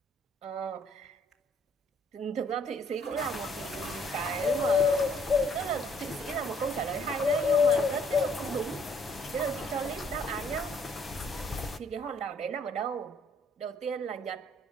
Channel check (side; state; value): both; normal; correlation 0.63